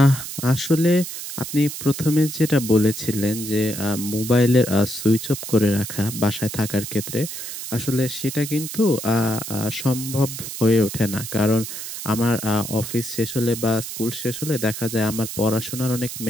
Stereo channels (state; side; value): noise; right; hiss, 8 dB below the sound